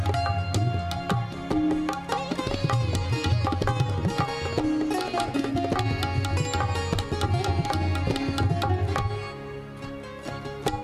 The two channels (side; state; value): both; identical; correlation 1.00